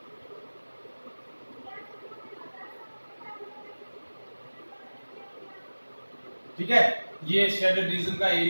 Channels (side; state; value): both; inverted; correlation -1.00